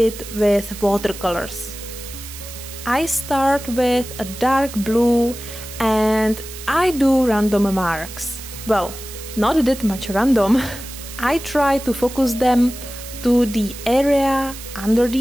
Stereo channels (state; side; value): noise; right; hiss, 13 dB below the sound